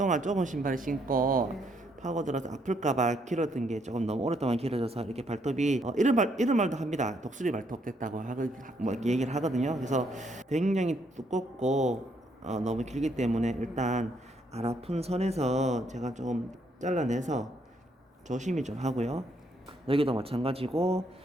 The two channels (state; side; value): normal; both; correlation 0.72